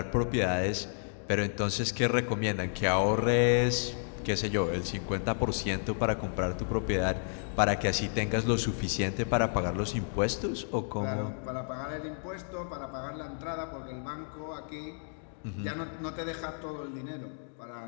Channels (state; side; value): silent; right; digital silence